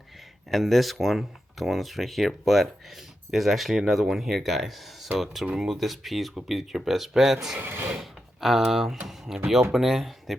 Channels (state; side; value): normal; both; correlation 0.88